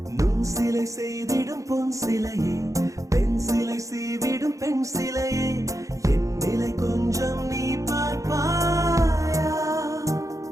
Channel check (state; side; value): late; left; 0.16 ms